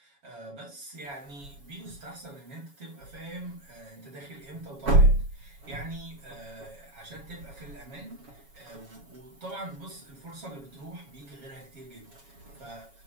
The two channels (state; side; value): late; left; 7.2 ms